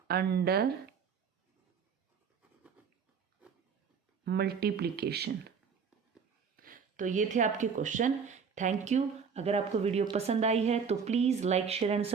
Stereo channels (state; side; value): quieter; left; 6.2 dB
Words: under multiplication. तो ये थे आपके क्वेश्चन। Thank you. अगर आपको वीडियो पसंद आई है तो please like, share and